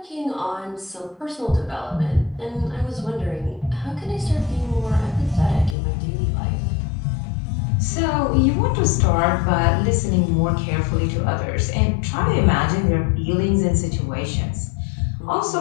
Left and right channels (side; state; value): right; drops out; at 5.8 s